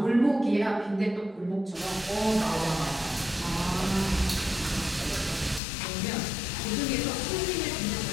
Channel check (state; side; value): drops out; right; at 5.6 s